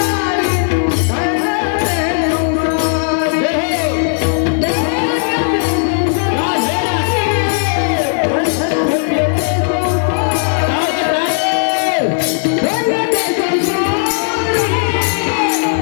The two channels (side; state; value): right; silent; digital silence